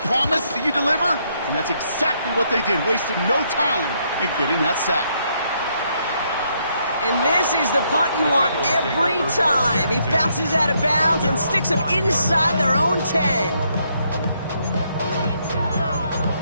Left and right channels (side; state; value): both; inverted; correlation -0.74